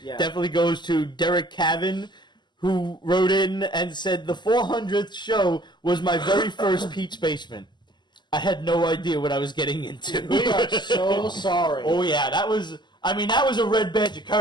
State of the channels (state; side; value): late; right; 0.21 ms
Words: definitely goes to Derek Cavan, who wrote in and said, the 400th show was my very first Pete's Basement. I had no idea what I was getting into. We are so sorry. Oh yeah, that was a red badge of